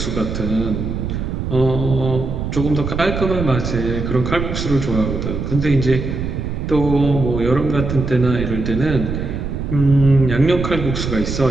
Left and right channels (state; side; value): noise; right; rumble, 4 dB below the sound